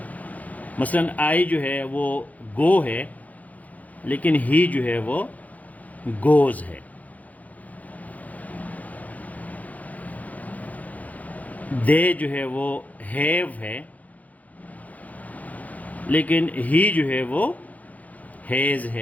مثلا آئی جو ہے وہ گو ہے، لیکن ہی جو ہے وہ گوز ہے. دے جو ہے وہ ہیو ہے، لیکن ہی جو ہے وہ ہیز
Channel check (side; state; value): right; late; 0.076 ms